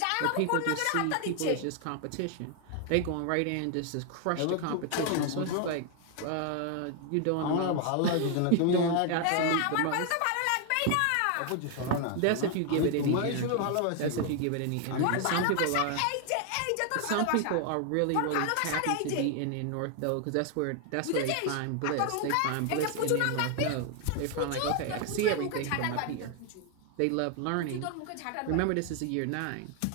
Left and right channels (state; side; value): different; both; correlation 0.00